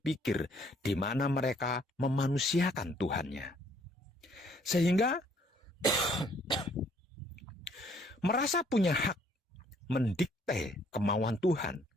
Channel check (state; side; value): normal; both; correlation 0.63